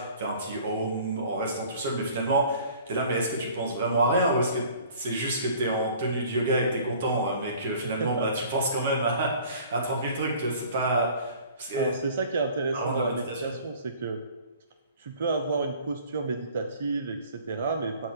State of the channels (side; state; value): both; inverted; correlation -0.50